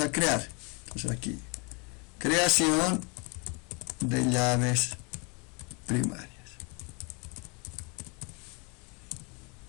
a crear. Entonces aquí, creación de llaves primarias.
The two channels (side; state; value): right; quieter; 32.1 dB